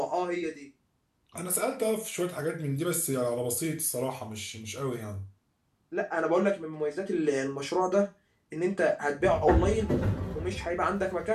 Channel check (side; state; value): both; identical; correlation 1.00